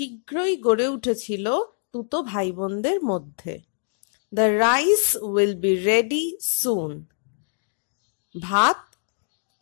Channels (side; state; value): right; silent; digital silence